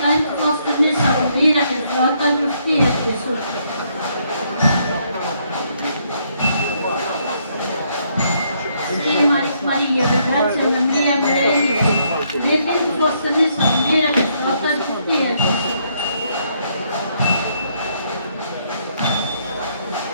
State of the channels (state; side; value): inverted; both; correlation -0.72